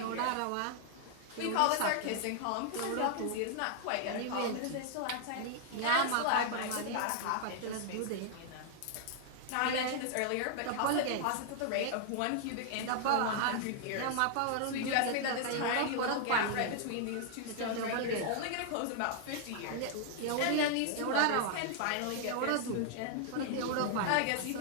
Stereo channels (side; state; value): both; different; correlation 0.00